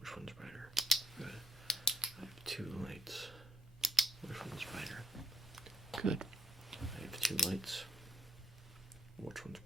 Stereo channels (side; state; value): both; normal; correlation 0.70